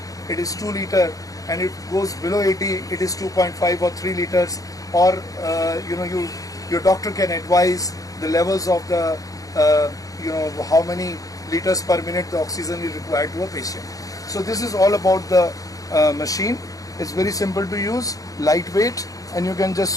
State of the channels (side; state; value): right; late; 0.17 ms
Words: it is 2 liter, and it goes below 80, it is 2.5 or 3 liters. Or your doctor can advise the levels of the how many liters per minute the oxygen is required to a patient. So this is all about the machine. It's very simple to use, lightweight, and you can just